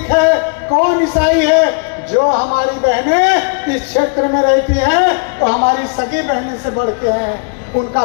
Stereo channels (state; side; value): quieter; right; 38.0 dB